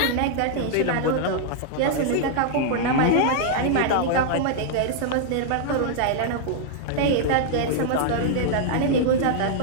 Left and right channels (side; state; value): both; different; correlation -0.01